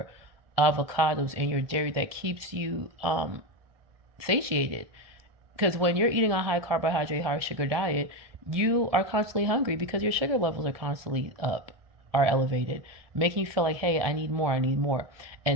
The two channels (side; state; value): left; late; 1.7 ms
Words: avocados and your dairy that keeps you satiated. Because when you're eating a high carbohydrate, high sugar diet, you are constantly hungry because your sugar levels are constantly up, are elevated, making you feel like, hey, I need more, I need more.